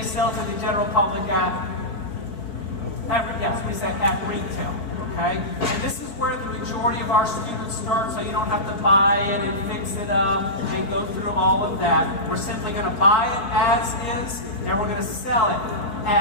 sell to the general public at retail. Okay? And this is where the majority of our students start, so you don't have to buy it and fix it up and go through all of that. We're simply going to buy it as is, and we're going to sell it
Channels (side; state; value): right; late; 4.6 ms